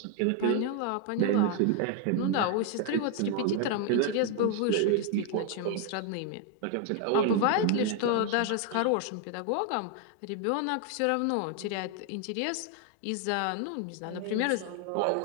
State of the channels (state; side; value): different; both; correlation 0.01